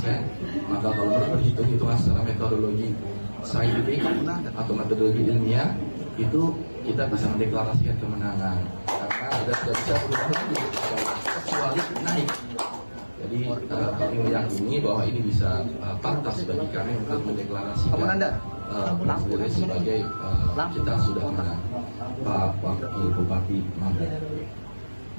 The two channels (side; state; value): both; inverted; correlation -1.00